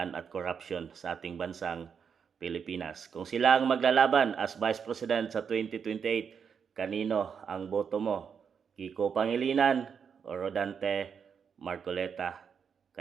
at corruption sa ating bansang Pilipinas. Kung sila ang maglalaban as Vice President sa 2028, kanino ang boto mo? Kiko Pangilinan o Rodante Marcoleta?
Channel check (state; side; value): quieter; left; 6.8 dB